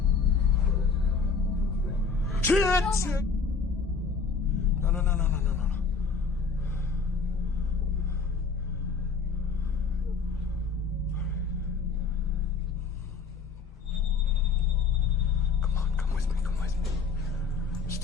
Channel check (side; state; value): right; quieter; 4.9 dB